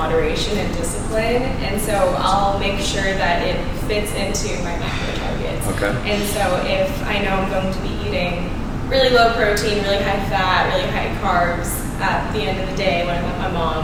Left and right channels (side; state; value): both; identical; correlation 1.00